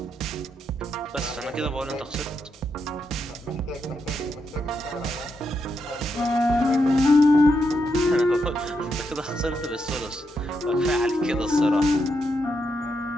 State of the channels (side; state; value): both; normal; correlation 0.82